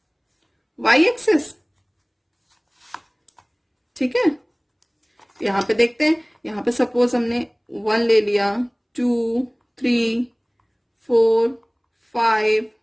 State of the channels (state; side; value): identical; both; correlation 1.00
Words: वाई एक्सिस। ठीक है, यहां पे देखते हैं, यहां पे सपोज हमने 1 ले लिया, 2 3 4 5